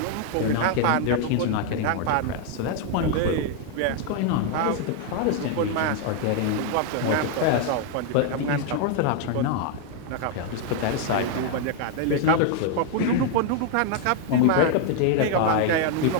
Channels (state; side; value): different; both; correlation 0.00